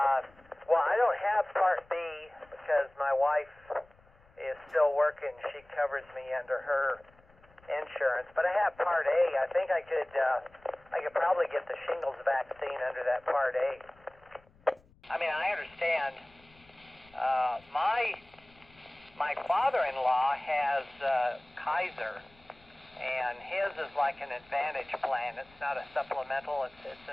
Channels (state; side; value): noise; left; rumble, 29 dB below the sound